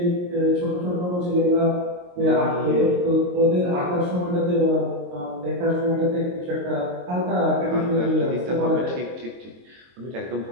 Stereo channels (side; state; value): left; late; 22 ms